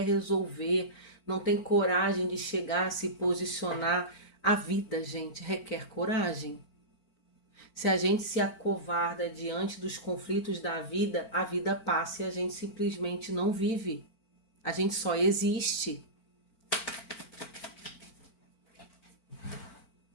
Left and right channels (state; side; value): late; right; 4.4 ms